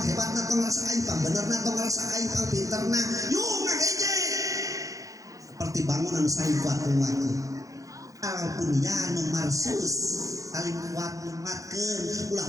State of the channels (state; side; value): late; left; 0.16 ms